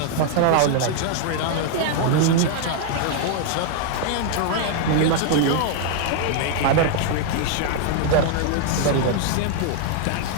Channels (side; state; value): both; different; correlation 0.00